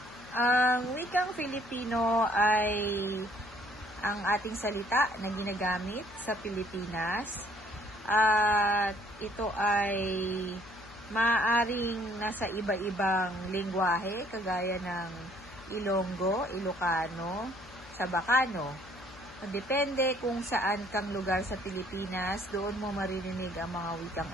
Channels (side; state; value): left; noise; hum, 20 dB below the sound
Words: Ang wikang Filipino ay ang ating salita na ginagamit sa Pilipinas at ito ay maaaring nasa iba-ibang lengguwahe kagaya ng Ilonggo, Ilocano, Sabacano. Depende kung saan kang lugar sa Pilipinas, doon mo maririnig ang mga wikang